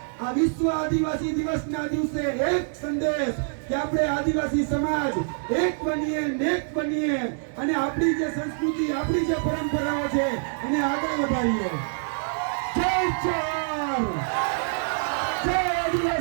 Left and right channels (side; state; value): left; silent; digital silence